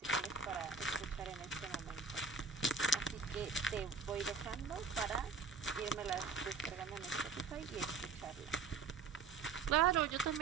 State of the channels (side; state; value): left; quieter; 4.7 dB